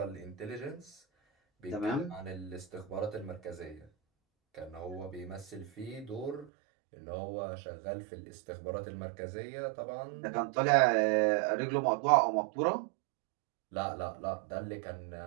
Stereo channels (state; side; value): drops out; left; at 6.5 s